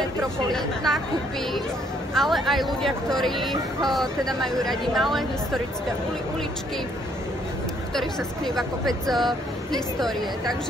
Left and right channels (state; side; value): normal; both; correlation 0.67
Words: nákupy, ale aj ľudia, ktorí teda majú radi malé historické uličky, v ktorých sa skrýva kopec histórie.